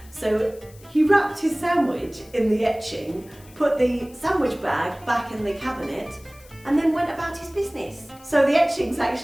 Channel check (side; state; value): left; noise; hiss, 24 dB below the sound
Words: So he wrapped his sandwich in the etching, put the sandwich bag back in the cabinet, and then went about his business. So the etching's